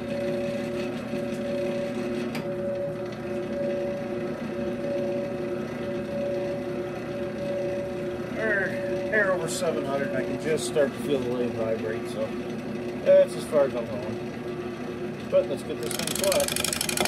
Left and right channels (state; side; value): identical; both; correlation 1.00